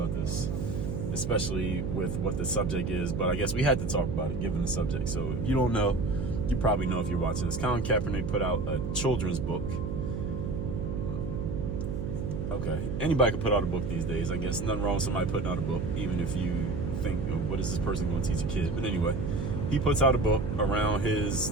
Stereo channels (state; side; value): noise; right; hum, 3 dB below the sound